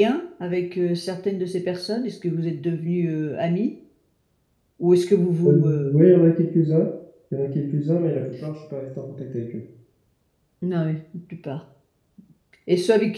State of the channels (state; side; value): identical; both; correlation 1.00